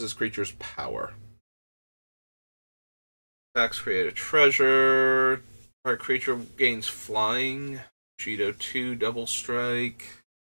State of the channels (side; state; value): both; inverted; correlation -1.00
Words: this creature's power. Attacks, create a treasure. Target creature gains flying. Cheeto 2, double strike.